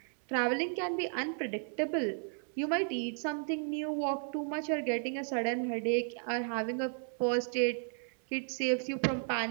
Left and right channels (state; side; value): silent; left; 55 dB below the other